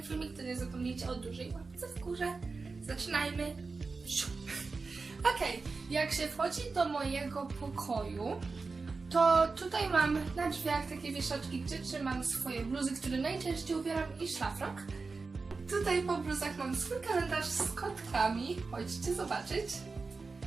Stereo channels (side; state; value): left; quieter; 4.2 dB